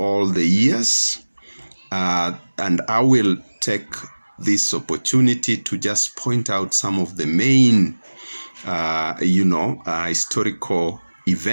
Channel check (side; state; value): both; inverted; correlation -1.00